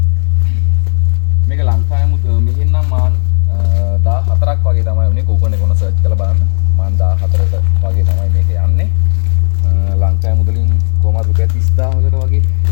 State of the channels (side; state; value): right; silent; digital silence